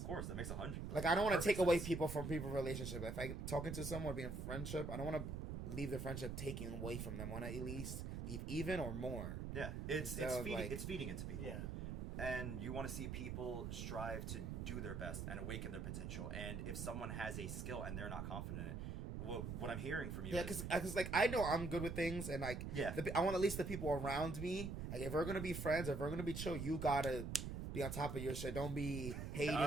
course, that makes 100. Like, I don't want to take away people from people's relationship. If I'm talking to someone, being a friendship, I don't want to leave the friendship taking away from them. I want to at least leave even or more. Yeah, it's feeding into people. Yeah. and you want to see people strive to do their best and awaken their potential. And if someone has a skill and they're not confident in it, what I'm hearing from you is... because like, I know I'm good with things, and like, I want at least the people around me, like, if we're gonna be friends, if we're gonna be chill, you gotta be on top of your shit. Don't be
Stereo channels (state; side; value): noise; right; rumble, 4 dB below the sound